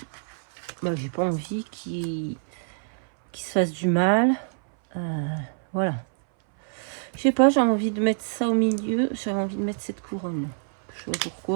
j'ai pas envie qu'il se fasse du mal. Voilà. Je sais pas, j'ai envie de mettre ça au milieu. J'avais envie de mettre cette couronne. Je sais pas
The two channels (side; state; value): left; silent; 59 dB below the other